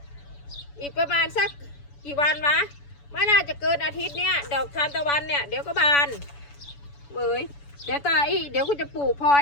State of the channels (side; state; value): right; late; 7.0 ms